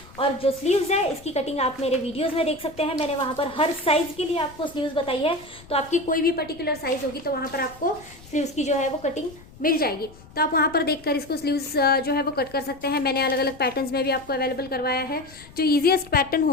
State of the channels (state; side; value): noise; left; rumble, 21 dB below the sound